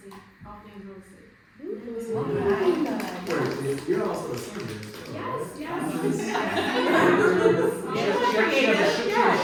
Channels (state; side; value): identical; both; correlation 1.00